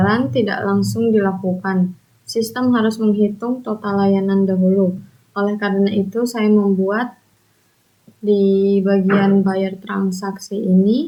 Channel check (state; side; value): identical; both; correlation 1.00